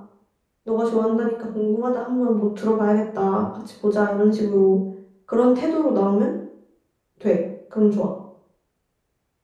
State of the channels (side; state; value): both; identical; correlation 1.00